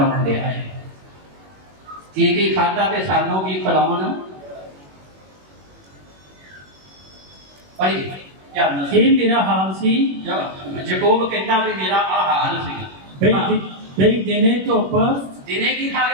ਦਿਆ ਹੈ, ਕੀ ਖਾਧਾ ਤੇ ਸਾਨੂੰ ਕੀ ਖਿਲਾਉਣ। ਭਾਈ ਇਹ ਮੇਰਾ ਹਾਲ ਸੀ। ਯਾਕੂਬ ਕਹਿੰਦਾ ਵੀ ਮੇਰਾ ਆ ਹਾਲ ਸੀ। ਬਈ ਦਿਨੇ ਧੁੱਪ, ਦਿਨੇ ਕੀ ਖਾ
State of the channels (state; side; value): late; left; 21 ms